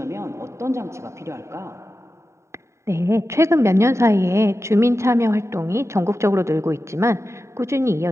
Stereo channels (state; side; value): late; left; 0.14 ms